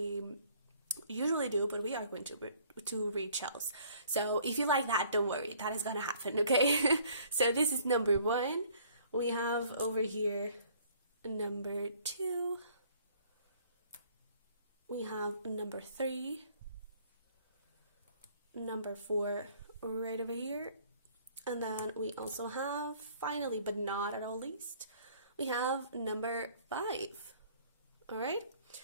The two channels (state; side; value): inverted; both; correlation -0.58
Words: usually do, but we are going to read shells. So if you like that, don't worry, that is gonna happen. Okay. So this is number 1. We have over here number 2. We have number 3, number 4 right over here, and then we also have, finally but not at all least, we have number 5. All right,